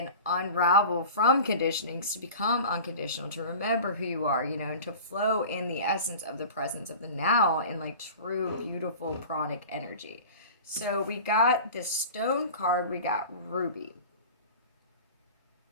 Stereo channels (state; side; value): inverted; both; correlation -0.37